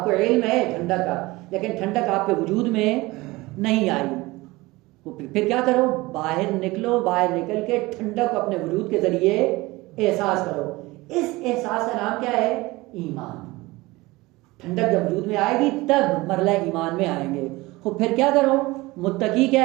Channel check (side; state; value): left; quieter; 21.1 dB